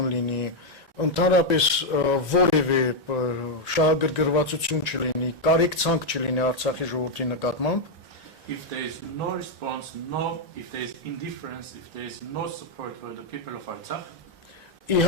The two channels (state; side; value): normal; both; correlation 0.00